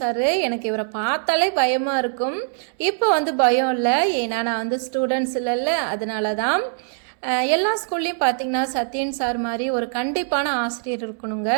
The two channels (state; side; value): silent; left; digital silence